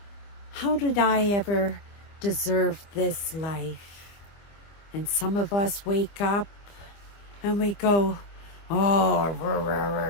how did I ever deserve this life? And some of us wake up and we go, oh,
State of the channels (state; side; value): late; right; 25 ms